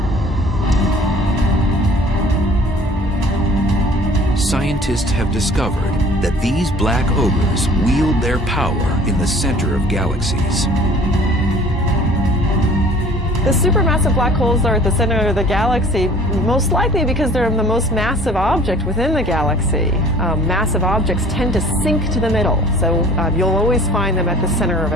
Scientists have discovered that these black ogres wield their power in the center of galaxies. The supermassive black holes are at the center of the galaxy, most likely because they're the most massive object within the galaxy. Massive objects tend to sink to the middle, so you'll always find them at the center of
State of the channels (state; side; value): normal; both; correlation 0.50